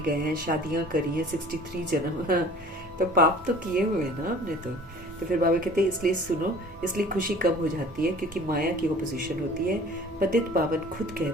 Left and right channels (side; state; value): both; normal; correlation 0.47